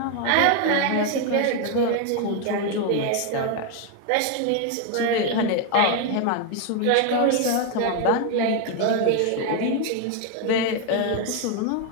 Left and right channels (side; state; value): both; different; correlation 0.01